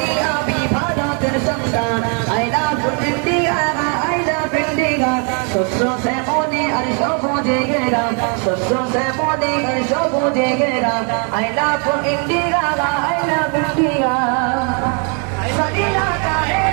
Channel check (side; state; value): left; quieter; 38.9 dB